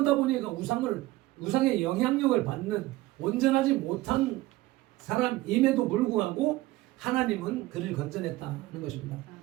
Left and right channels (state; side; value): quieter; left; 18.2 dB